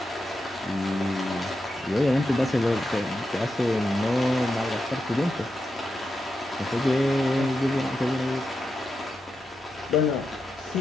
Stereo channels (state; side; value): normal; both; correlation 0.87